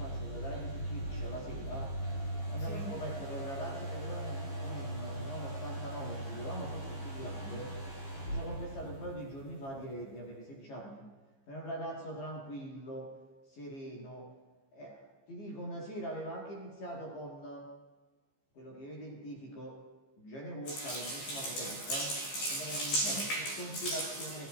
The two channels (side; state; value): right; late; 15 ms